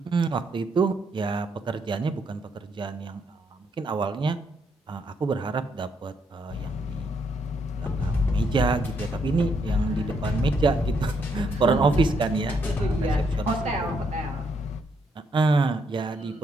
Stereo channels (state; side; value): normal; both; correlation 0.75